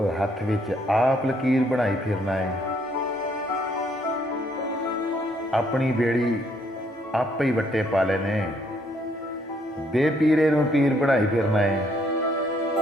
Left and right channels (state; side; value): normal; both; correlation 0.68